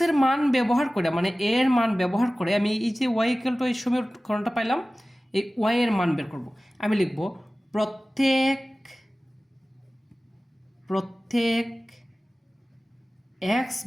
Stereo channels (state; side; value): normal; both; correlation 0.97